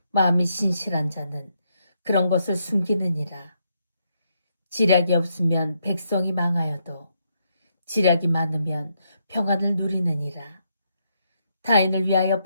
마음이 신실한 자는 그런 것을 숨기느니라. 지략이 없으면 백성이 망하여도 지략이 많으면 평안을 누리느니라. 타인을 위하여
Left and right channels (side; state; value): both; inverted; correlation -0.78